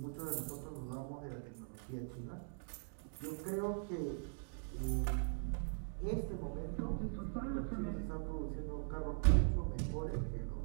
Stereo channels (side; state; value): left; silent; digital silence